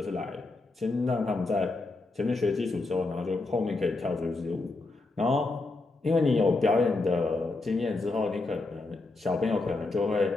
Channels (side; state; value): right; quieter; 3.3 dB